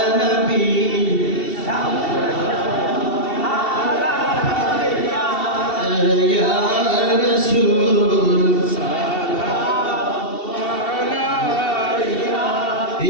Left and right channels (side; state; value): right; late; 2.7 ms